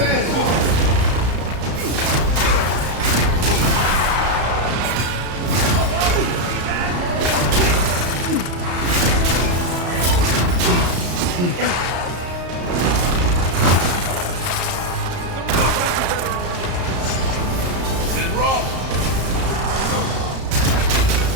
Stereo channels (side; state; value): left; late; 34 ms